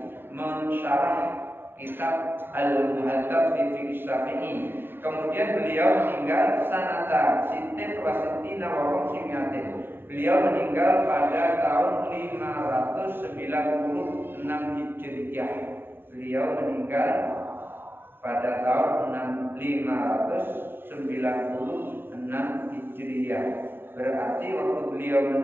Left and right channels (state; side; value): late; left; 0.10 ms